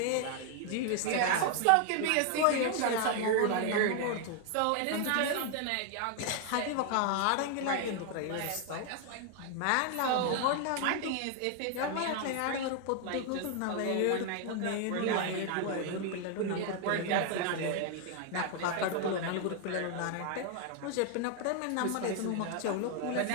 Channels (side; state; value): both; different; correlation 0.00